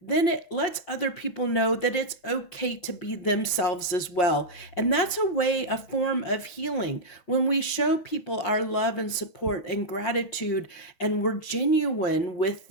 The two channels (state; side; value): late; right; 5.6 ms